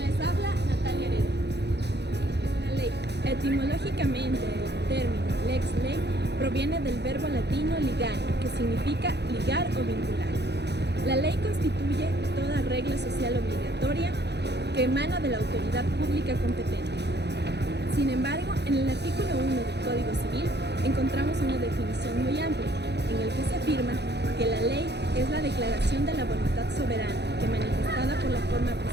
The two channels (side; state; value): left; late; 0.49 ms